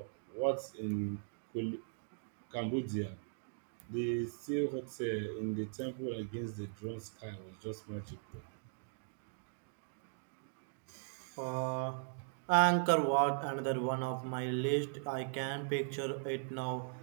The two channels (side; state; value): left; silent; digital silence